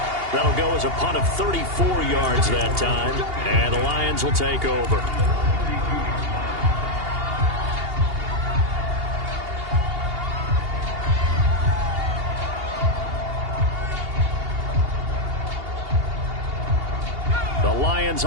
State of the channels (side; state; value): left; late; 2.8 ms